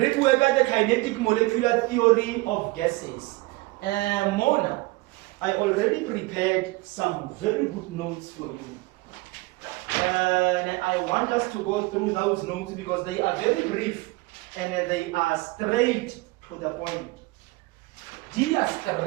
kinetic molecular theory of gases. Mona, I already prepared some very good notes for you. And I want us to go through those notes because they are very brief and they are straight to the point. They are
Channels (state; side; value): quieter; left; 22.6 dB